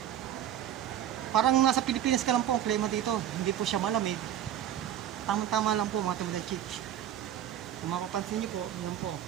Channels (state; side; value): quieter; left; 10.7 dB